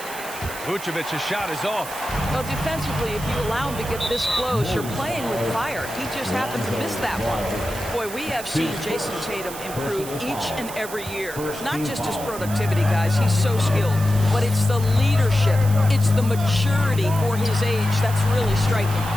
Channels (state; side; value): noise; right; hiss, 12 dB below the sound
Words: Vucevic's shot is off. Well, defensively, if you allow him to get this close, you're playing with fire. He just happened to miss that one. Boy, we have seen Jason Tatum improve each and every year. Not just his productivity, guys. He's so skilled. But it's the leadership. It's the maturity for his age that's really striking.